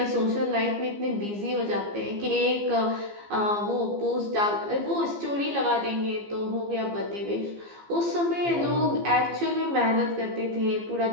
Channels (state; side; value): late; left; 15 ms